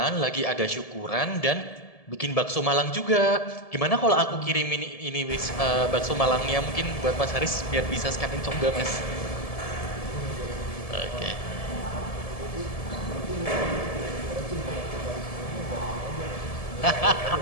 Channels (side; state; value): right; late; 1.7 ms